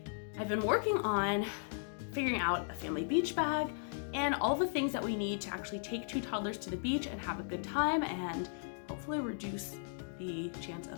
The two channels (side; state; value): right; silent; digital silence